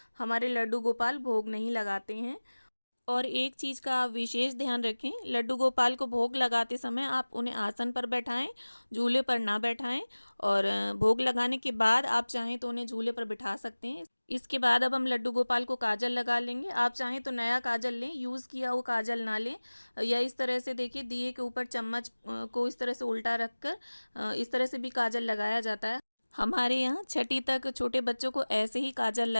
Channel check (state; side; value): inverted; both; correlation -1.00